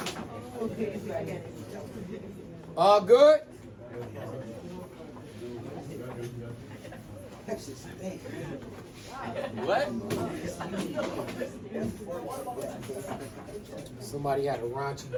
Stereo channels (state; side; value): identical; both; correlation 1.00